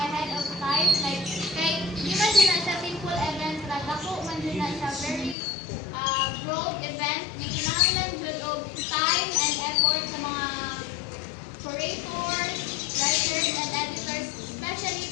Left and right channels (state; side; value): drops out; right; at 5.4 s